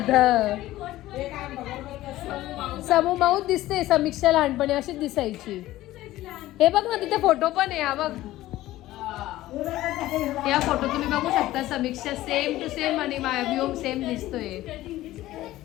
समू माऊत दिसते. समीक्षा लहानपणी अशीच दिसायची. हे बघ ना तिथे फोटो पण आहे. हा बघ या फोटो तुम्ही बघू शकता. समीक्षा सेम टू सेम आणि व्योम सेम दिसतोय.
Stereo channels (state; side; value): quieter; right; 15.9 dB